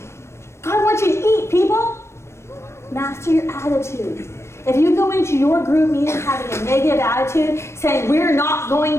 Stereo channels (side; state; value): right; late; 0.13 ms